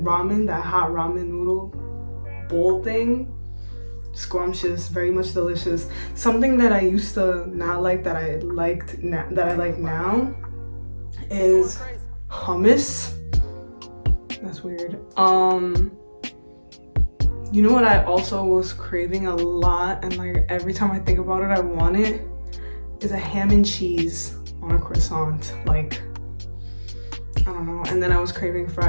that hot ramen noodle bowl thing, scrumptious, very much delicious. Something that I used to not like that I like now is hummus. That's weird. You know what I also was craving a lot, and like every time I think about it I want it, is a ham and cheese on a croissant. Like, I don't know. And then I was craving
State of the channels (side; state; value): both; inverted; correlation -1.00